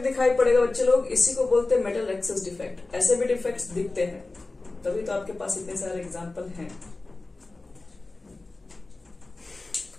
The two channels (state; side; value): quieter; right; 3.3 dB